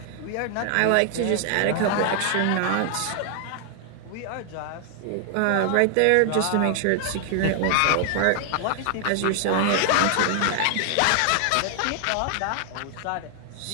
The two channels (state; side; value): different; both; correlation 0.00